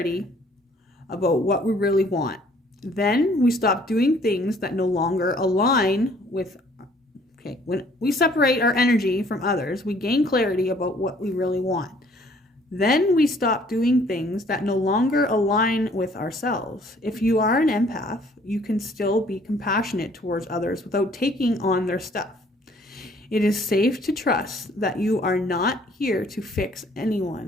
about what we really want. Then we stop doing things that no longer align with, when we separate our energy from others, we gain clarity about what we really want. Then we stop doing things that no longer align with ourselves. If you are an empath, you can still be compassionate towards others without taking on their stuff. It is safe to trust that you are not here to fix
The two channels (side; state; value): both; normal; correlation 0.59